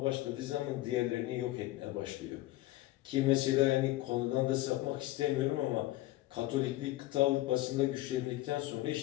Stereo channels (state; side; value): quieter; right; 17.2 dB